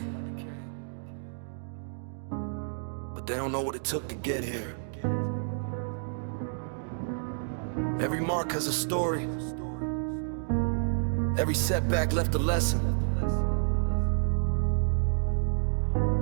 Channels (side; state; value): left; silent; digital silence